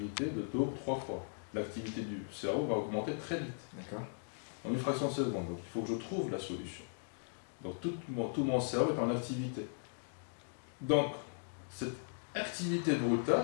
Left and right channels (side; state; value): right; silent; digital silence